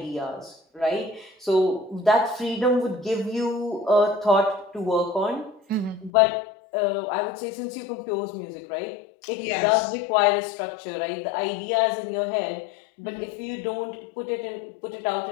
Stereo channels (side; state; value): right; drops out; at 6.1 s